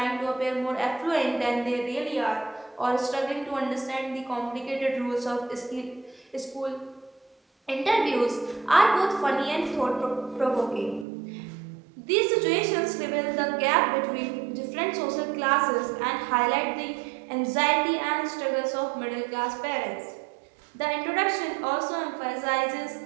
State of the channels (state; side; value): drops out; left; at 11.1 s